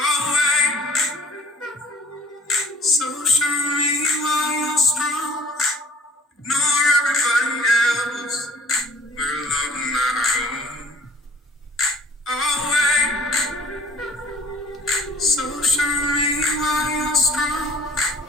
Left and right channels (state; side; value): normal; both; correlation 0.50